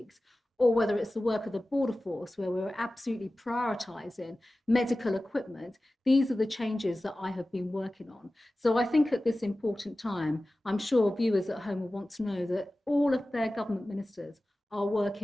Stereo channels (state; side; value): normal; both; correlation 0.96